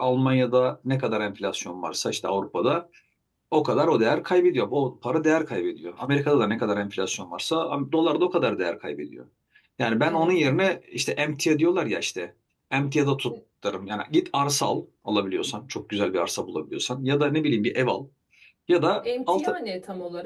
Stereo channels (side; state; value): both; identical; correlation 1.00